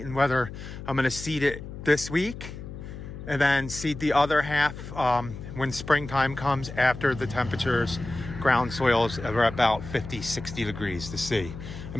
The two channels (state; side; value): noise; left; hum, 11 dB below the sound